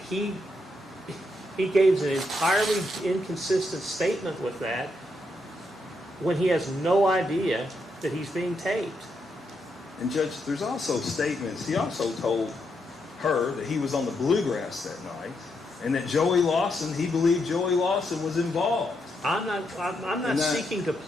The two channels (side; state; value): both; normal; correlation 0.80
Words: gave an entirely inconsistent statement with that when he has no idea that he's being taped. And Judge, there's also statements. He also told her that he was on the Bluegrass that night, and that he believed Joey Lawson was involved. I'm not seeking to